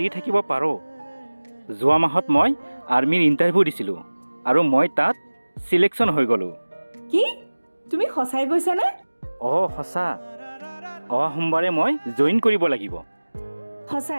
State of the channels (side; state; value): both; inverted; correlation -1.00